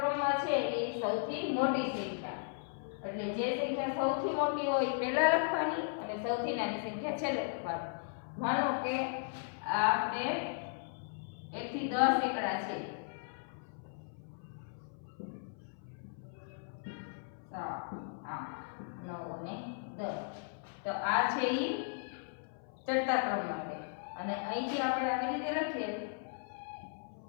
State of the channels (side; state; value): right; silent; 53 dB below the other